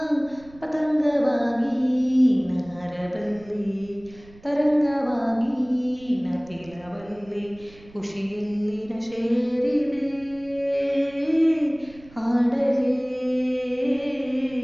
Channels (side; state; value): right; noise; rumble, 23 dB below the sound